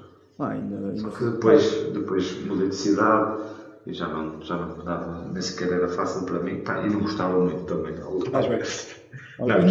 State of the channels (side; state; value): both; identical; correlation 1.00